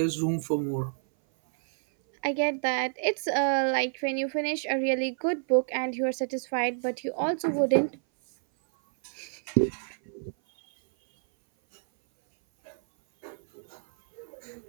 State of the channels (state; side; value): silent; left; 57 dB below the other